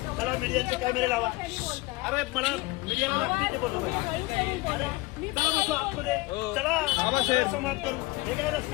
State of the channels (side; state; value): right; quieter; 22.3 dB